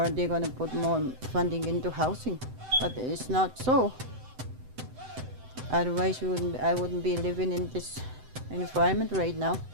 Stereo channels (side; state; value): left; late; 7.8 ms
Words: they're gonna put more funding into housing, but it's not so. Otherwise, I wouldn't be living in this environment right now,